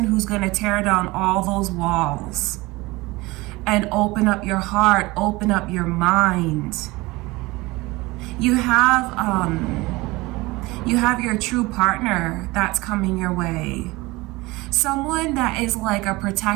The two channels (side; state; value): left; quieter; 21.9 dB